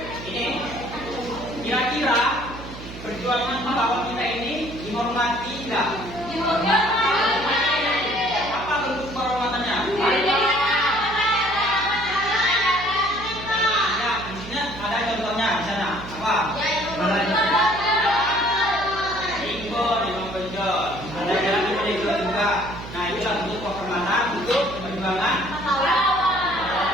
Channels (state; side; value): noise; right; hum, 12 dB below the sound